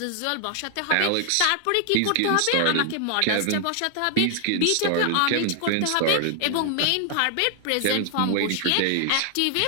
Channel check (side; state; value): both; different; correlation 0.00